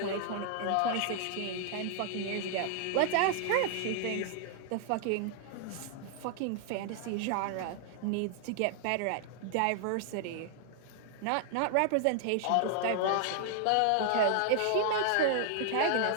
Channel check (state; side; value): different; both; correlation 0.00